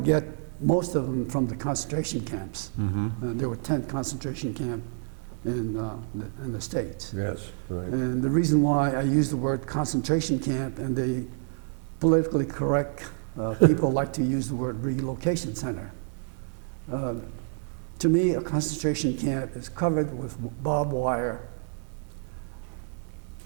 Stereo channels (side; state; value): left; silent; 59 dB below the other